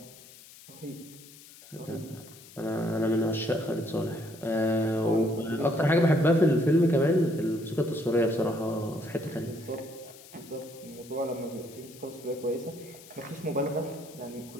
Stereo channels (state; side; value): noise; left; hiss, 20 dB below the sound